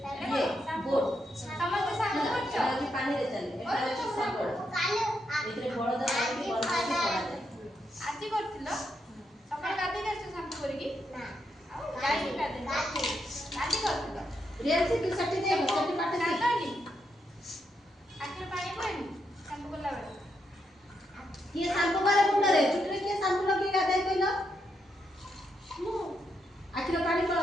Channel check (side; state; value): both; normal; correlation 0.81